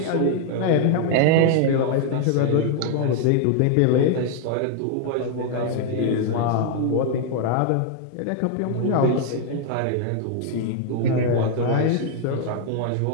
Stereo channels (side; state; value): both; different; correlation 0.00